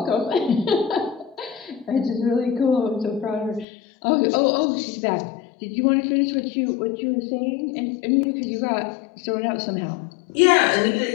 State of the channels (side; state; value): right; drops out; at 3.7 s